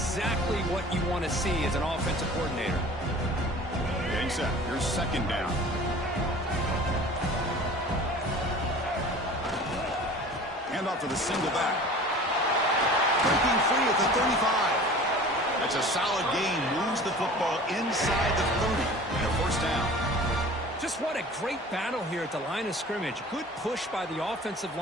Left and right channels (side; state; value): both; normal; correlation 0.43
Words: what you want to see as an offensive coordinator. Getting set. Here's 2nd down. Hand off to the single back. Breaking free at the 35. That's a solid gain. Moves the football inside the 30 and a first down. Just what a great battle here at the line of scrimmage. Good push by the offensive